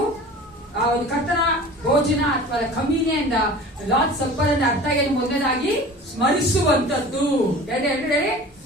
ಆ ಒಂದು ಕರ್ತನ ಭೋಜನ ಅಥವಾ ಕಮ್ಯುನಿಯನ್ ಲಾರ್ಡ್ ಸಪ್ಪರ್ ಅಂದ್ರೆ ಅರ್ಥ ಏನು? ಮೊದಲನೇದಾಗಿ ಸ್ಮರಿಸುವಂತದ್ದು,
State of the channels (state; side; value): normal; both; correlation 0.40